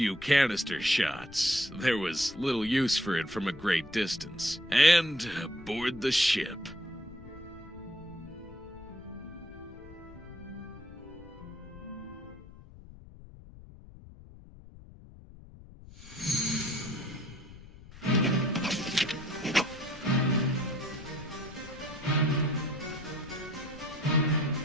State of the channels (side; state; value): left; noise; rumble, 18 dB below the sound